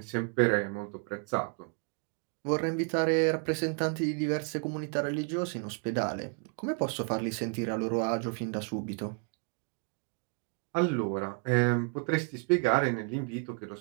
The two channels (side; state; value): left; quieter; 35.5 dB